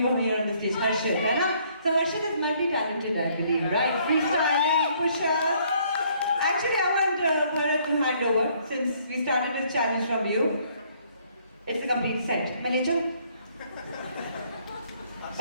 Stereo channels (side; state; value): both; inverted; correlation -0.65